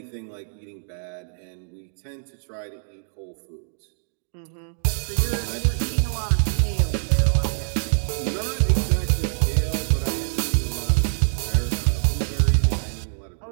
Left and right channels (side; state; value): left; silent; digital silence